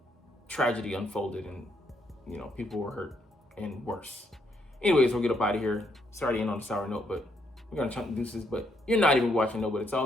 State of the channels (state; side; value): normal; both; correlation 0.74